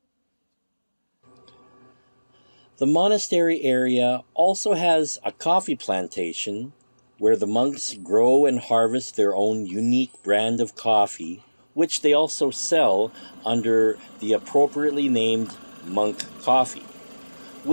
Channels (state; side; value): inverted; both; correlation -1.00